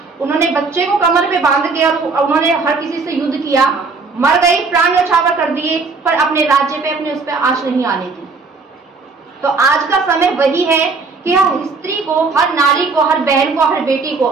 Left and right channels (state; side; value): quieter; left; 4.2 dB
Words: उन्होंने बच्चे को कमर पे बांध के और उन्होंने हर किसी से युद्ध किया, मर गई, प्राण न्यौछावर कर दिए, पर अपने राज्य पे अपने उस पर आंच नहीं आने दी। तो आज का समय वही है कि हर स्त्री को, हर नारी को, हर बहन को, हर बेटी को